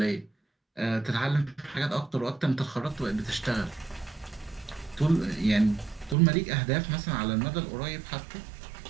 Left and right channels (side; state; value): left; drops out; at 6.2 s